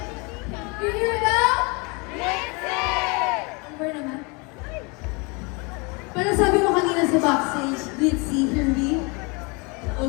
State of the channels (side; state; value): right; quieter; 29.6 dB